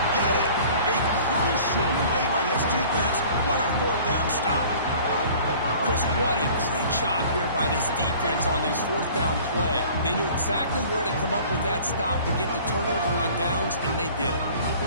get it. A crucial play by this defense. What a fourth down stop. Chris, what a great job here by this defense on this fourth down play. They knew exactly where to come up with that stop to get the turnover on downs, and they did it.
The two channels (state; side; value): inverted; both; correlation -0.48